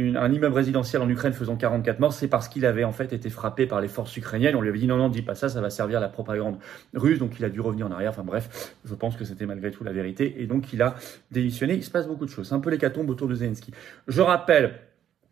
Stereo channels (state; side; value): quieter; left; 10.2 dB